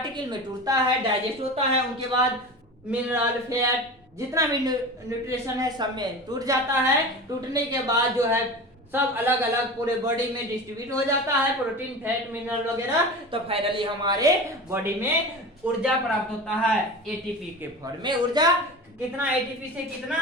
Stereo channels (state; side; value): normal; both; correlation 0.31